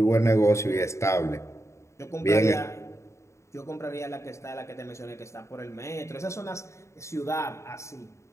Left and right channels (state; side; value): late; right; 0.14 ms